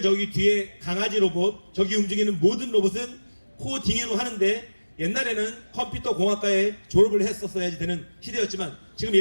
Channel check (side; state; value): both; inverted; correlation -1.00